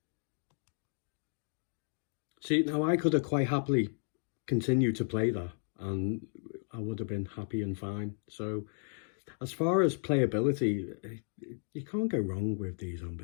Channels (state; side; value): silent; right; 55 dB below the other